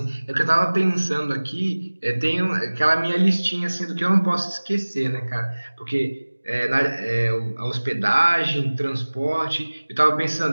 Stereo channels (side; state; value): both; inverted; correlation -1.00